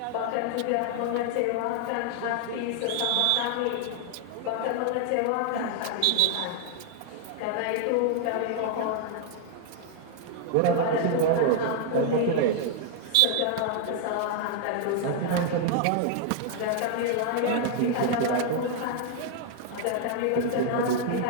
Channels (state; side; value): different; both; correlation 0.00